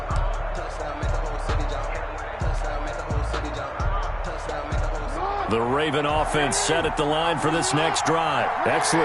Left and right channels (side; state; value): both; identical; correlation 1.00